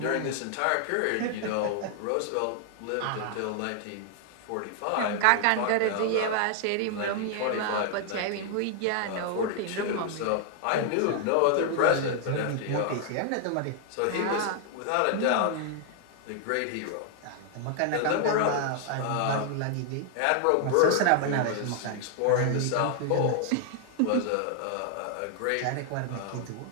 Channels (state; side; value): different; both; correlation 0.00